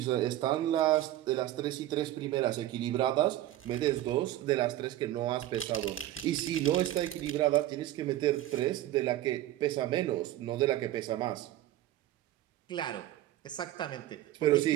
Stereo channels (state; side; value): quieter; left; 14.2 dB